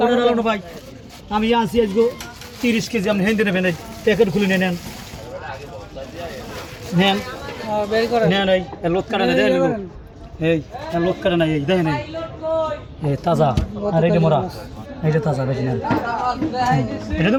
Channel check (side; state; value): both; identical; correlation 1.00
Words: ভাই আমি আনছি আজকে 30 কেজি আপনি হেঁটে নেবেন প্যাকেট খুলে নেন নেন নেন এই লোক কাটা না দেন এই লোক কাটা না এই দেখেন এই তাজা আর এইটা মোরা এইটা তাজা বেশি নেন এটা